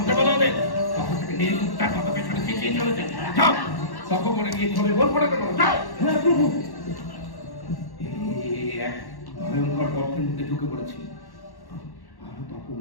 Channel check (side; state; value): right; late; 1.1 ms